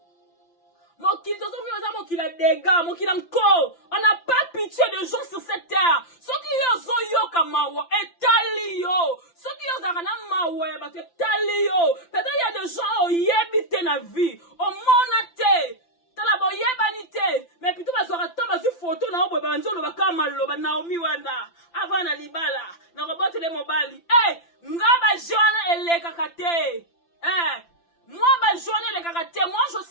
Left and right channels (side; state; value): right; late; 5.9 ms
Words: Mon qui a dégâts, mon qui encore. On n'a pas pitié de gens sur cette terre. Ceux qui ont yo kamawa et talio. Ceux qui ont zangana mawa et talio. Peut-être il y a des gens qui yebite na vie. Au monate. Tala bo yebanite. Mais plutôt bazora tamba sur photo na obo banzo lo bakama lo ba Naomi wana. Avant na libala. Na robote le mobali. Eh, ngaba jona eleka kate. Eh. Moi, ma journée, les caractères, moi, je